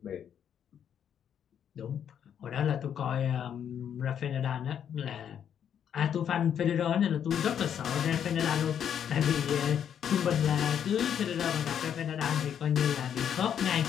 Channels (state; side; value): quieter; right; 8.8 dB